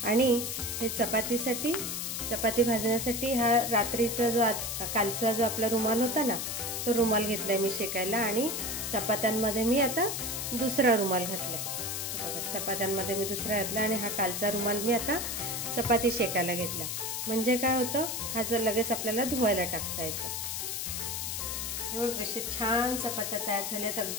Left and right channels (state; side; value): noise; left; hiss, 3 dB below the sound